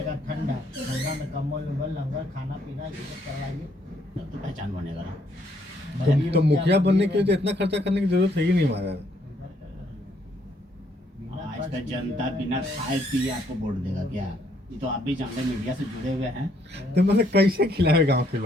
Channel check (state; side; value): normal; both; correlation 0.69